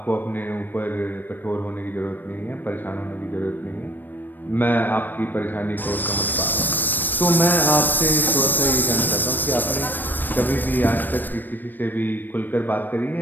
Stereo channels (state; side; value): late; right; 0.091 ms